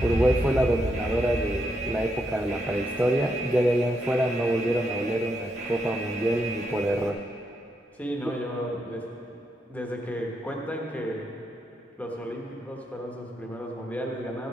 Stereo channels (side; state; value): both; normal; correlation 0.80